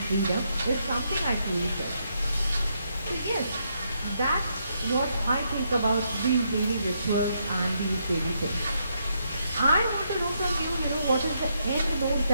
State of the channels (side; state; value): both; inverted; correlation -0.78